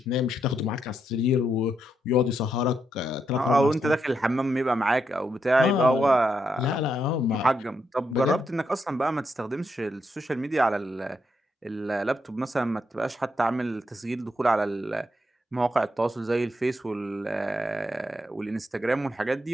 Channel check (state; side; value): normal; both; correlation 0.80